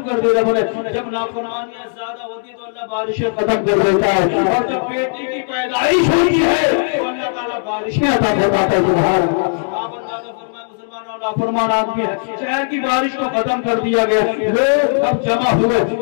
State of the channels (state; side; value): silent; right; digital silence